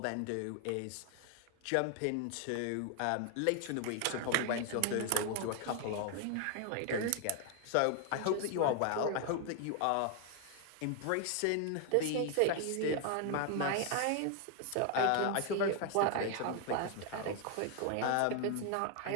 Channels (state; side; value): different; both; correlation 0.00